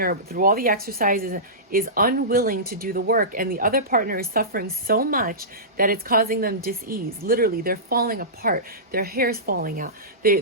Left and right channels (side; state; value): both; normal; correlation -0.20